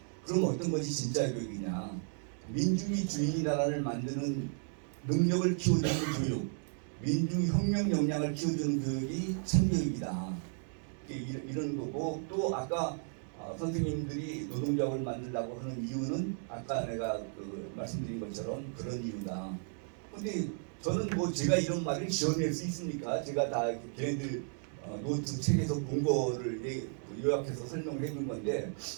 그럼 어떤 것이 진짜 교육이냐? 민중이 주인이 나라를 만드는 능력을 키워주는 교육, 민중혁명 역량을 키워주는 교육이 참교육이다. 이런 거고 또 아까 선생님들이 노동조합을 만들려고 하는 이유는 아까 내가 말씀드린 것처럼 그런 이유다. 근데 저는 뭐 제가 이런 말을 지어낼 수 있습니까? 제가 다 걔네들 노트 책에서 본 거를 요약해서 설명을 해준 건데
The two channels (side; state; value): left; silent; 55 dB below the other